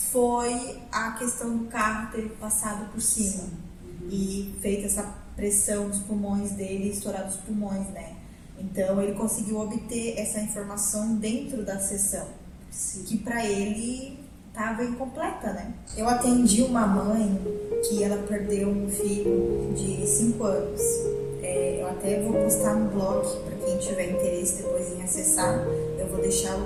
foi a questão do carro ter passado por cima e feito essa pressão nos pulmões dele, estourado os pulmões, né? Então ele conseguiu obter essa informação dentro da sessão, que para ele estava incompleta, né? Eu atendi uma mãe que ela perdeu um filho de 5 anos. Eu até vou postar no blog para quem tiver interesse depois em acessar. Eu vou deixar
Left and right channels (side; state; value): both; identical; correlation 1.00